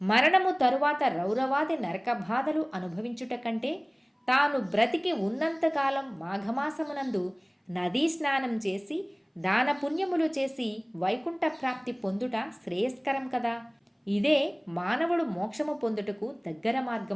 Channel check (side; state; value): both; identical; correlation 1.00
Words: మరణము తరువాత రౌరవాది నరక బాధలు అనుభవించుట కంటే తాను బ్రతికి ఉన్నంతకాలం మాఘమాసమునందు నదీ స్నానం చేసి దాన పుణ్యములు చేసి వైకుంఠ ప్రాప్తి పొందుట శ్రేయస్కరం కదా. ఇదే మానవుడు మోక్షము పొందుటకు దగ్గర